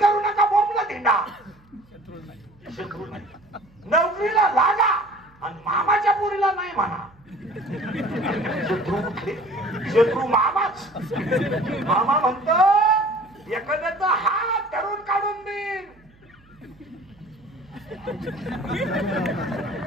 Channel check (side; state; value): right; noise; hum, 29 dB below the sound